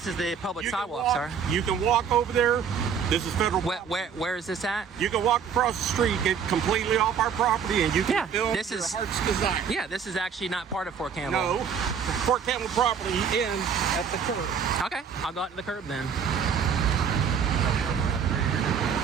is the public sidewalk, sir. You can walk over there. This is federal. Where is this at? You can walk across the street, get completely off our property, and you can film this to is your heart's desire. Yeah, this is actually not part of Fort Campbell. No, Fort Campbell property ends at the curb. Okay, I'll go out to the curb then.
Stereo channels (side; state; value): left; quieter; 7.0 dB